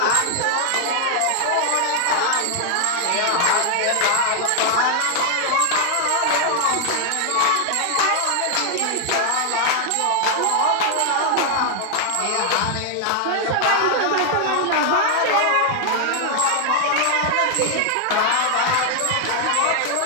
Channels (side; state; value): both; different; correlation 0.00